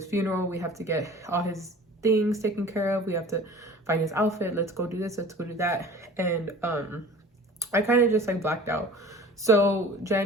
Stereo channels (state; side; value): normal; both; correlation 0.42